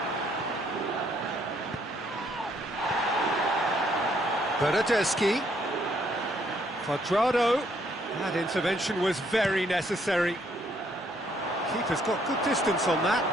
Bernardeschi. Cuadrado. That intervention was very necessary. Keeper's got good distance on that.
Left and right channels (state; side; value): normal; both; correlation 0.69